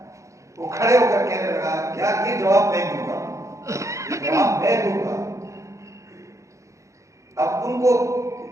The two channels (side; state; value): left; late; 0.15 ms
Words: وہ کھڑے ہو کر کہنے لگا یار یہ جواب میں دوں گا، یہ جواب میں دوں گا۔ اب ان کو